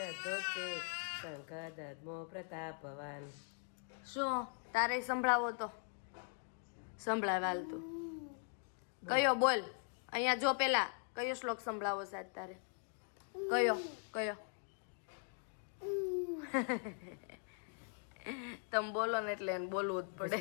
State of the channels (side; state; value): right; silent; 51 dB below the other